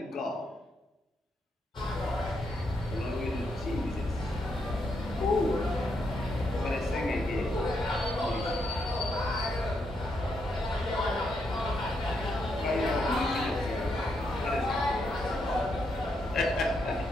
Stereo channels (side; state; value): both; normal; correlation 0.79